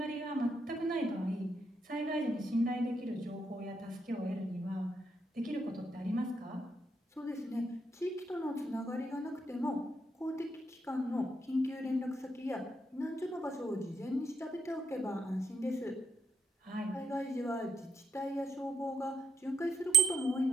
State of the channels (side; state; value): both; normal; correlation 0.74